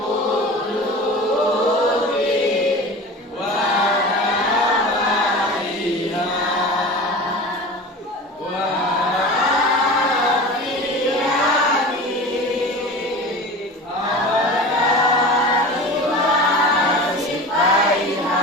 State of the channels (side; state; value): both; normal; correlation 0.34